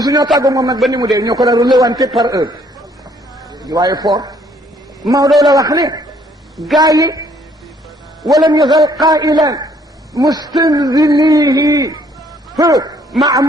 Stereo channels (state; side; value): normal; both; correlation 0.64